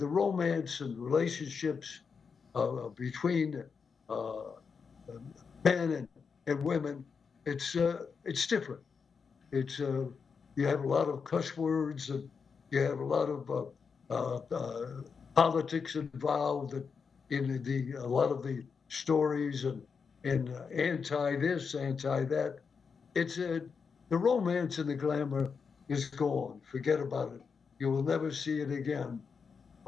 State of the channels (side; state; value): right; quieter; 5.7 dB